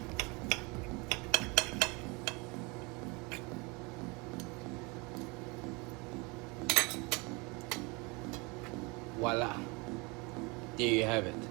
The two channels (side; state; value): left; quieter; 28.0 dB